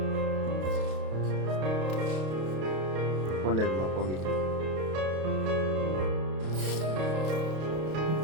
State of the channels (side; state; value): left; late; 32 ms